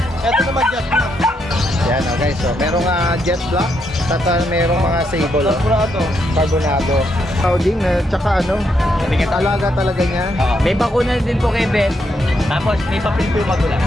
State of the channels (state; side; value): normal; both; correlation 0.78